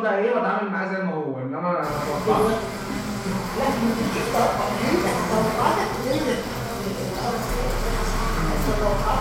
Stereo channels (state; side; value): identical; both; correlation 1.00